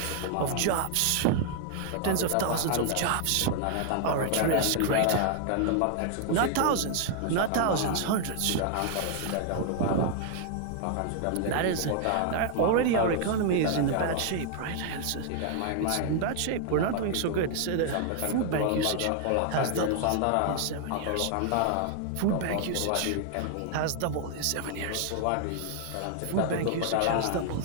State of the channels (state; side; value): different; both; correlation 0.00